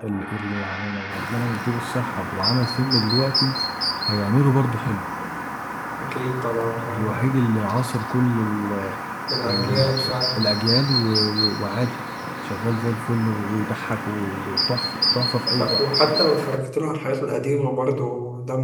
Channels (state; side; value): identical; both; correlation 1.00